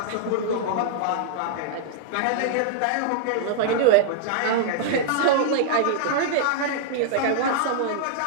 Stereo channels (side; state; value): both; different; correlation -0.02